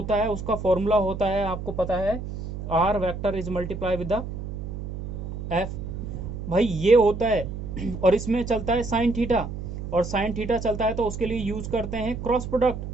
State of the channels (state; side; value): noise; right; hum, 7 dB below the sound